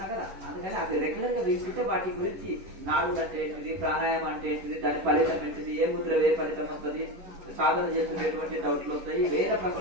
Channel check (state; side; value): late; left; 11 ms